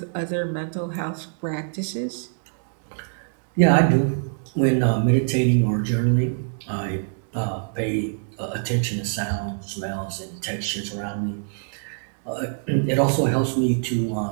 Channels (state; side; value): silent; left; digital silence